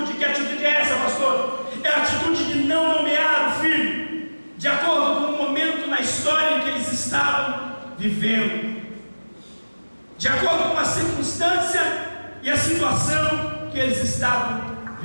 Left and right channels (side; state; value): both; inverted; correlation -1.00